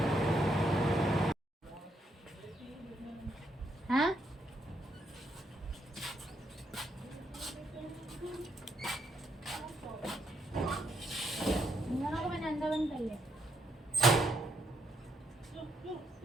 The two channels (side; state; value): both; normal; correlation 0.76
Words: हाँ, मैंने अंदर बंद कर लिया।